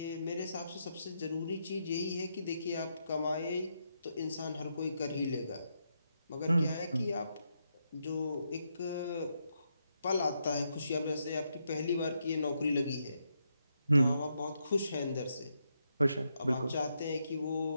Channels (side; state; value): both; inverted; correlation -0.81